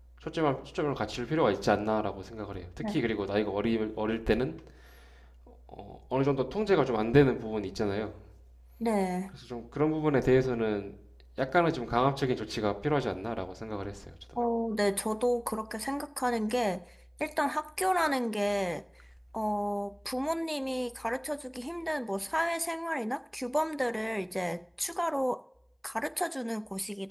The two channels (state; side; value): identical; both; correlation 1.00